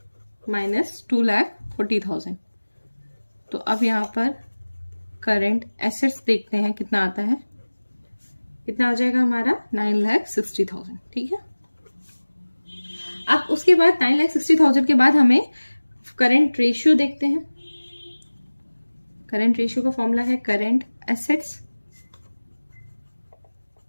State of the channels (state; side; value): inverted; both; correlation -1.00